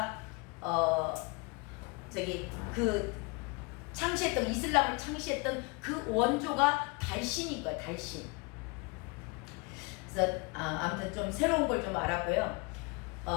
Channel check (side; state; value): right; quieter; 29.5 dB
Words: 창시했던, 이슬람을 창시했던 그 원조가 달신인 거야. 달신. 그래서 아무튼 좀 새로운 걸 좀 알았고요.